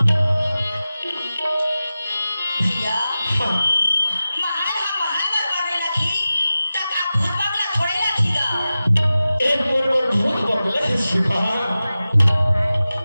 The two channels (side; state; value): both; inverted; correlation -0.95